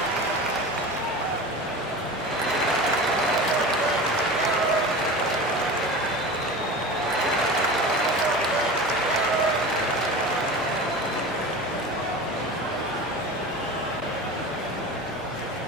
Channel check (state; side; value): normal; both; correlation 0.32